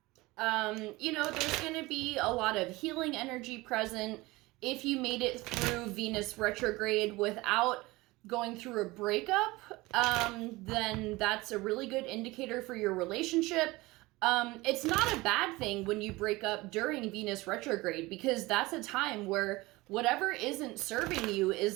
there's going to be a lot of healing energy present. If you made it through Venus retrograde without going through a breakup, then that's a really good indicator for your relationship. It's not a bad thing when you break up during Venus retrograde, because that's a time where whatever isn't serving you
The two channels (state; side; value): quieter; left; 21.1 dB